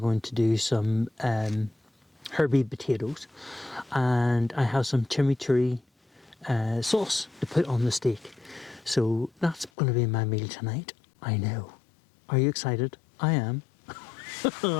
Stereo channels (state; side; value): drops out; right; at 9.7 s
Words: to do some herby potatoes, and I have some chimichurri sauce to put on the steak. So that's going to be my meal tonight. I know. Are you excited? I am.